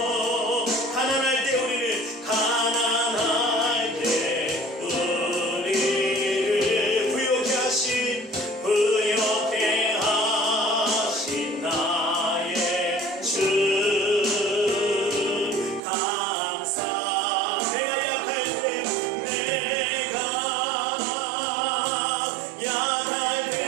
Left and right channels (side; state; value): left; drops out; at 15.8 s